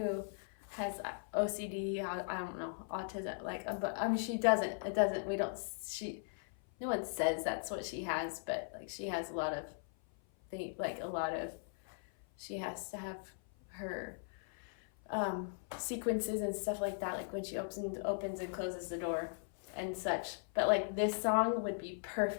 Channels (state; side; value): silent; right; 52 dB below the other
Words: has OCD, I don't know, autism, but I mean, she doesn't, no one says that's what she has, but like she has a lot of things, she has to have her sequences and stuff like that, like when she opens and closes the door and such. But like this song would be